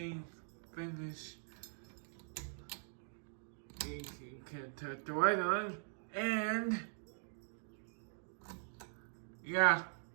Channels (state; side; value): silent; left; digital silence